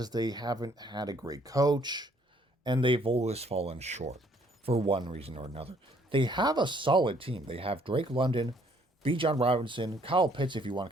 they haven't had a great coach, and they've always fallen short for one reason or another. They have a solid team. They have Drake London, Bijan Robinson, Kyle Pitts, if you want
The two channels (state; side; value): normal; both; correlation 0.64